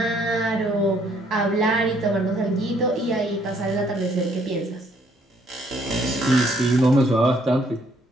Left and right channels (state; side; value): normal; both; correlation 0.66